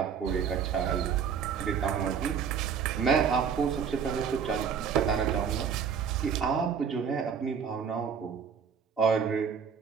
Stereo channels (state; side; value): quieter; left; 6.9 dB